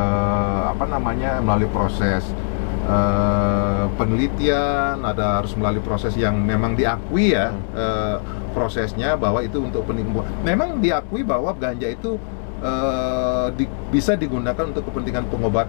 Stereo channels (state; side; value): silent; right; digital silence